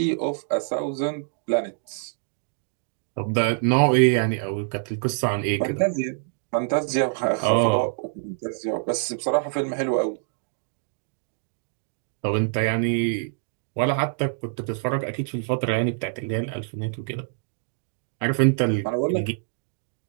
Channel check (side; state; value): left; silent; digital silence